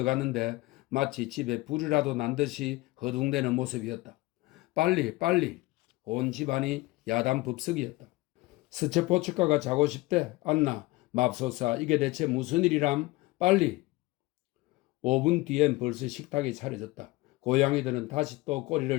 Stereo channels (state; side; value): quieter; right; 20.7 dB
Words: 마치 집에 불이라도 난 듯이 허둥대는 모습이었다. 빨리. 온 집안이 야단법석이었다. 스체포츠카가 자고 싶대. 안나 맙소사 이게 대체 무슨 일이람? 빨리. 5분 뒤엔 벌써 식탁이 차려졌다. 고양이들은 다시 또